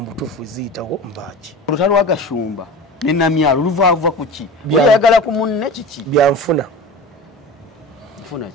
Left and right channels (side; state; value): both; normal; correlation 0.33